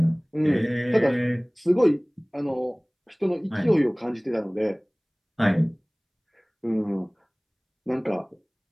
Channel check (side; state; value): both; identical; correlation 1.00